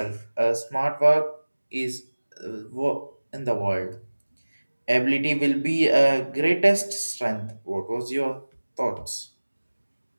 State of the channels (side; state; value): both; inverted; correlation -1.00